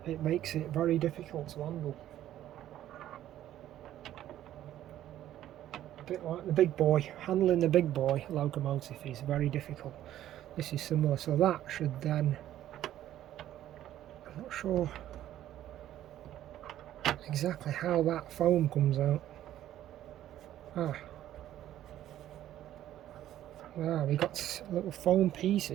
It makes it very difficult to handle. A bit like the big boy. Handling the big boy locomotive is very difficult. This is similar, so that should then I'm not sure exactly how that foam comes out. We got little foam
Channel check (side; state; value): left; quieter; 12.5 dB